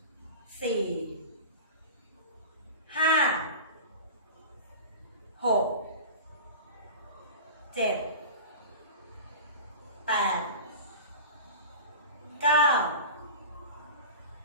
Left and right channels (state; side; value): inverted; both; correlation -0.32